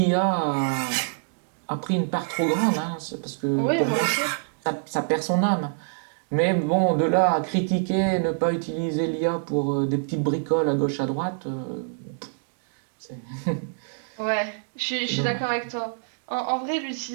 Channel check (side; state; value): left; silent; digital silence